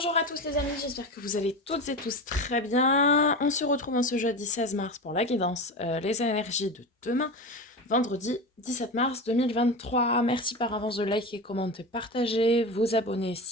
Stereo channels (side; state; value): both; normal; correlation 0.25